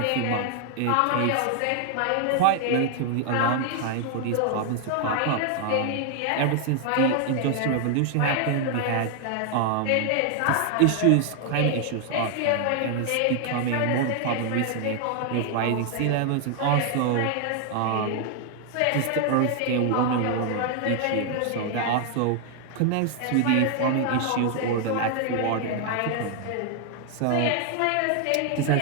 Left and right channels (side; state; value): both; different; correlation 0.00